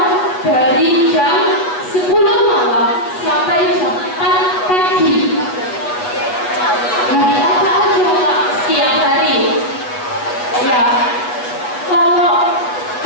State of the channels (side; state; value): right; late; 8.2 ms